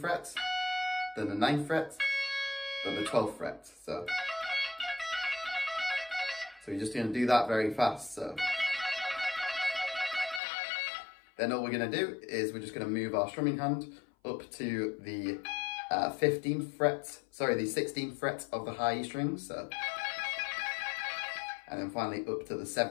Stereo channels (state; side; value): drops out; right; at 10.4 s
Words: fret, then the 9th fret, then the 12th fret, so you're just going to do that very fast, so. Then all we're going to do is we're just going to move our strumming hand up to the 16th fret of the high E string, so, and then finally up to the